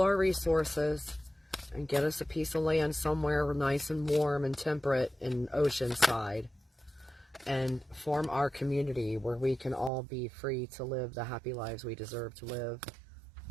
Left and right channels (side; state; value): left; drops out; at 9.9 s